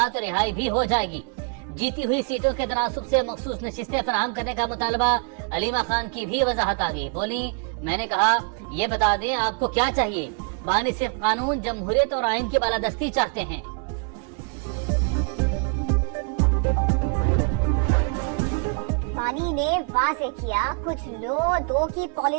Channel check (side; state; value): left; quieter; 39.6 dB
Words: तो रिहाई भी हो जाएगी। जीती हुई सीटों के तनासुब से मखसूस नशिस्तें फराहम करने का मुतालबा। अलीमा खान की भी वजाहत आ गई। बोली, मैंने कहा ये बता दें आपको क्या चाहिए। बानी सिर्फ कानून, जमहूरियत और आइन की बालादस्ती चाहते हैं। बानी ने वाज़े किया, कुछ लो दो की